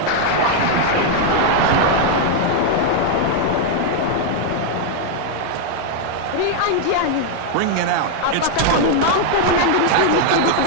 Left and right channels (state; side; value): different; both; correlation 0.00